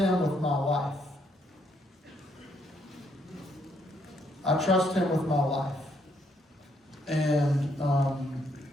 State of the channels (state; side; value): normal; both; correlation 0.72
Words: with my life. I trust him with my life. And